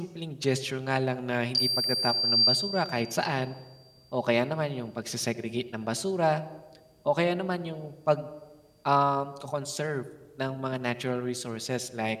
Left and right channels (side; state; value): both; identical; correlation 1.00